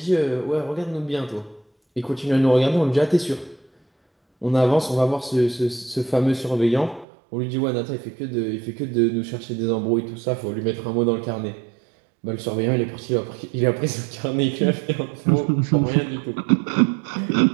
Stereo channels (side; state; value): left; drops out; at 7.1 s